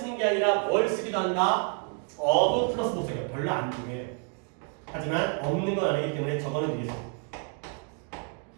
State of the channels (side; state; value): left; quieter; 39.5 dB